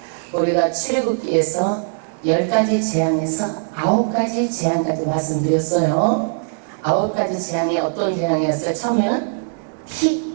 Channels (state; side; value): silent; left; digital silence